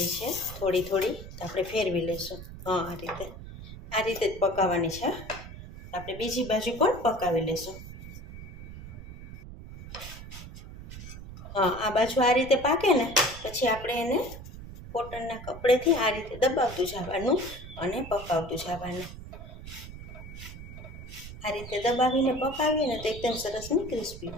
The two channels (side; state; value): right; noise; rumble, 13 dB below the sound